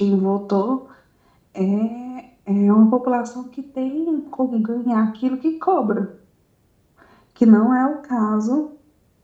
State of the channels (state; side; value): identical; both; correlation 1.00